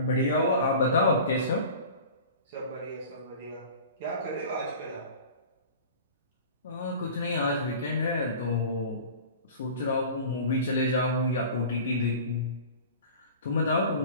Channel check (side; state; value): both; inverted; correlation -0.39